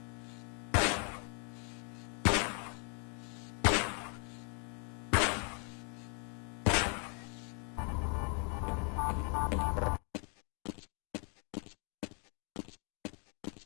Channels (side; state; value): right; quieter; 39.0 dB